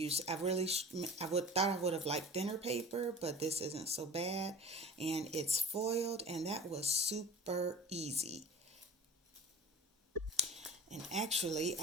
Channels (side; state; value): both; normal; correlation 0.39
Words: thought I would have liked thinner paper, but this isn't so bad. And it's foiled, and that was super easy. And actually,